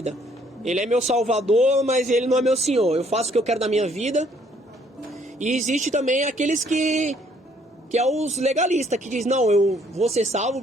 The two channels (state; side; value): normal; both; correlation 0.64